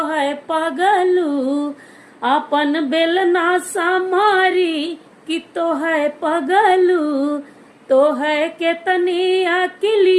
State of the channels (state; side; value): identical; both; correlation 1.00